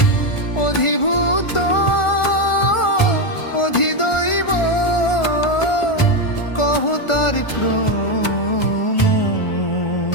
অধিভূত অধিদৈব কহ তার ক্রম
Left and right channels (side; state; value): right; late; 1.4 ms